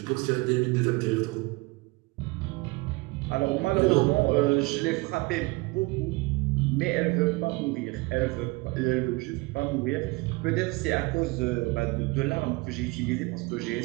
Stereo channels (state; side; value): quieter; left; 24.5 dB